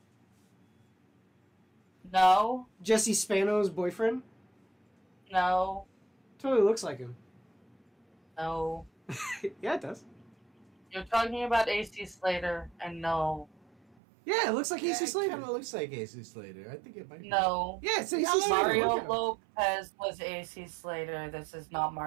No, Jesse Spano's boyfriend? no, Totally looks like him. no. Yeah, it does. You're talking about AC Slater, and no. Yeah, it looks like AC It Slater. kind of looks like AC Slater. I think it might. No. Yeah, it's AC Yeah, Slater. Mario Look at him. Lopez was AC Slater. This is not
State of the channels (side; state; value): left; drops out; at 14.0 s